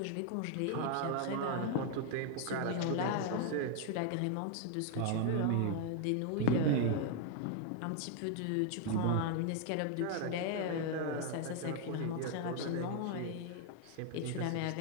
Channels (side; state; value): both; different; correlation 0.00